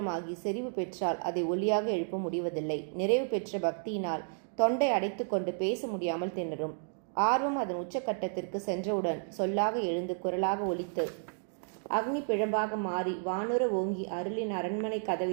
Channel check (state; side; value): silent; left; digital silence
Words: செறிவு பெற்றால் அதை ஒலியாக எழுப்ப முடிவதில்லை. நிறைவு பெற்ற பக்தியினால் தொண்டை அடைத்து கொண்டு பேச முடியாமல் திணறும். ஆர்வம் அதன் உச்சக்கட்டத்திற்கு சென்றவுடன் சொல்லாக எழுந்து குரலாக ஒலித்து அக்னி பிழம்பாக மாறி வானுர ஓங்கி அருளின் அரண்மனை